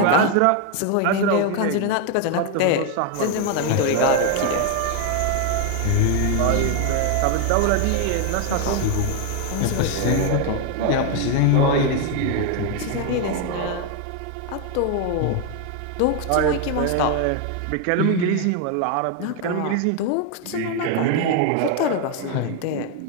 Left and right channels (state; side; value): different; both; correlation 0.01